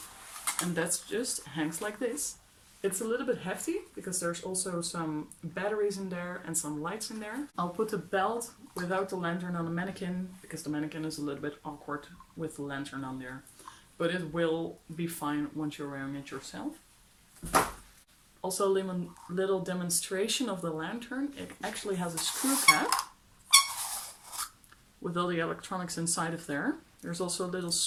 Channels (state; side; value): identical; both; correlation 1.00